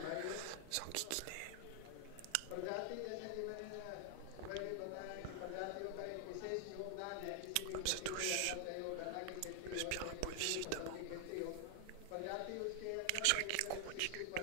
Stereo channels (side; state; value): both; different; correlation 0.00